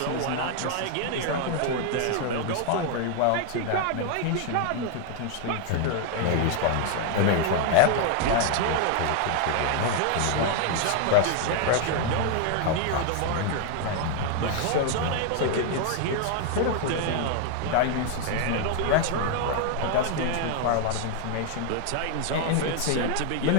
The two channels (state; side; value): different; both; correlation 0.00